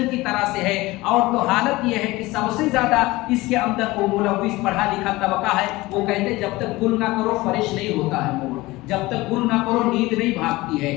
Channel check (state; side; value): quieter; right; 20.1 dB